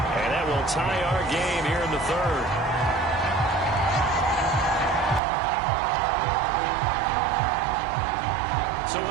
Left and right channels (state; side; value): drops out; left; at 5.2 s